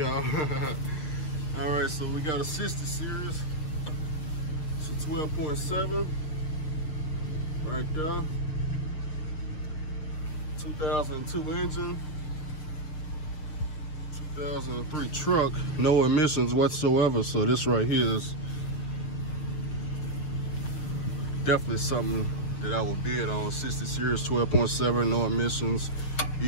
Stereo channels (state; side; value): late; right; 6.6 ms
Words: All right, so we got a 60 series. 12.7 right there. 2002 engine, 2003 truck, no emissions whatsoever. So this right here is definitely something that I would bid on. 60 series, 12.7, no emissions,